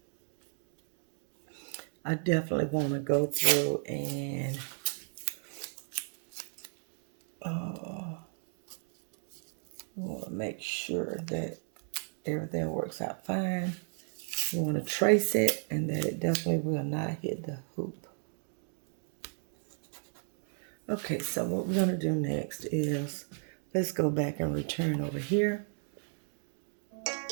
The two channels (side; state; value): left; silent; 55 dB below the other